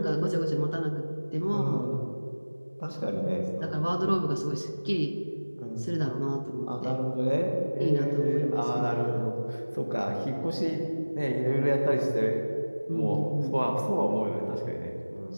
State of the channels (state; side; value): inverted; both; correlation -1.00